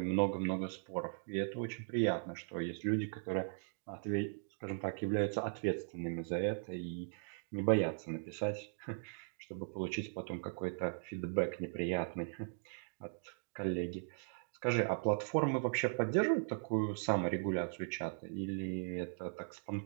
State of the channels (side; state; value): left; silent; digital silence